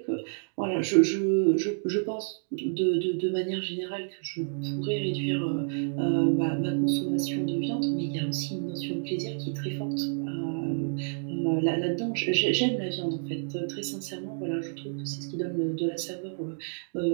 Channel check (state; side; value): silent; left; digital silence